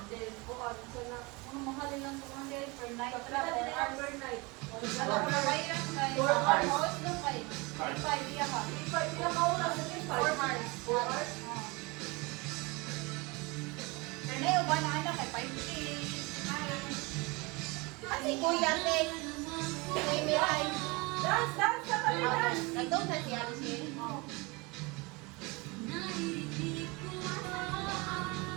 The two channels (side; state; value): left; quieter; 26.3 dB